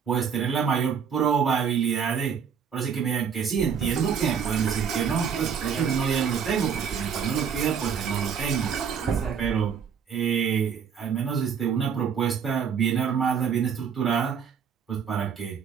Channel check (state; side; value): quieter; left; 7.0 dB